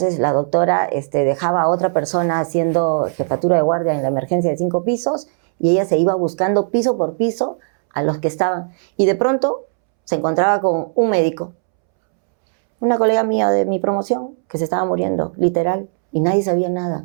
la doctora dejaba a otra persona haciendo jefatura de guardia en la emergencia de 5 pisos y ella se iba buscando piso por piso a los que estaban. Y de pronto se encontraba con un médico, una colega mía de mi promoción, que se estaba muriendo, literal, y nadie sabía nada.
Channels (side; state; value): left; silent; 67 dB below the other